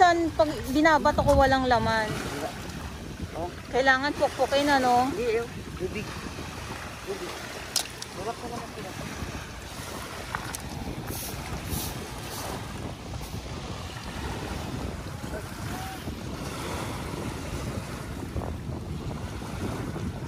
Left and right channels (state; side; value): identical; both; correlation 1.00